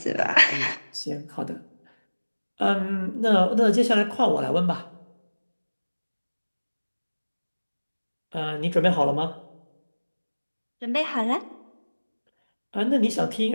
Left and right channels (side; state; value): both; inverted; correlation -1.00